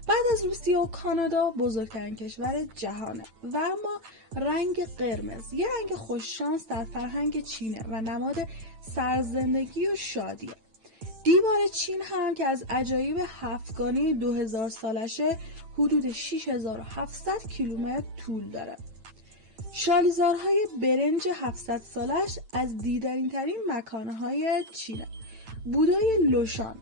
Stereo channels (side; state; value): left; late; 9.0 ms